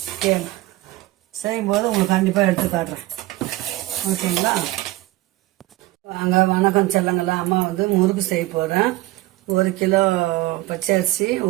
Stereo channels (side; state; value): left; quieter; 18.4 dB